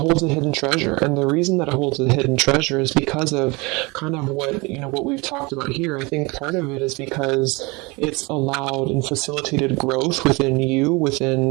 treasure, and the reason that it holds a hidden treasure is because of kind of what we've talked about here. I think part of it is because it's allowed and facilitated growth within you,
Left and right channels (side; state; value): left; quieter; 26.1 dB